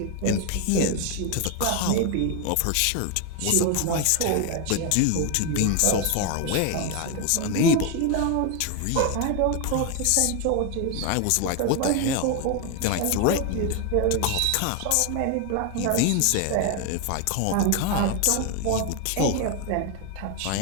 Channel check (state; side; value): different; both; correlation 0.01